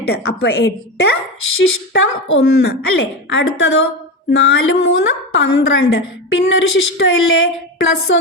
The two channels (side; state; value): both; normal; correlation 0.19